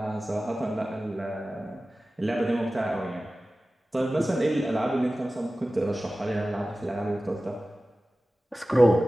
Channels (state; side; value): normal; both; correlation 0.96